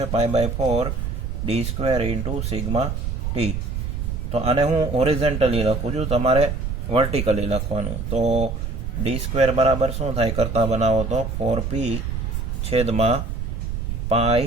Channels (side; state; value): right; noise; rumble, 3 dB below the sound